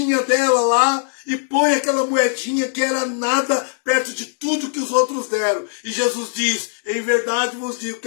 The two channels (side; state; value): right; silent; digital silence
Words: dela lá e põe aquela moedinha que era nada perto de tudo que os outros deram. E Jesus diz, em verdade vos digo